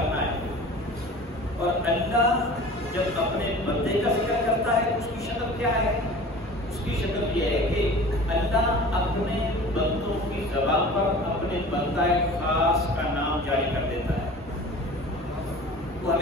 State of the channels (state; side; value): normal; both; correlation 0.41